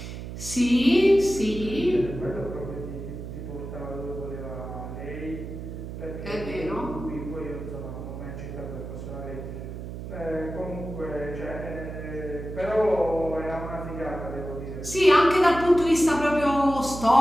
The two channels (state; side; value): noise; right; hum, 9 dB below the sound